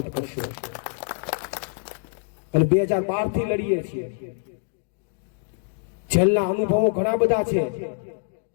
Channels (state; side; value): silent; right; digital silence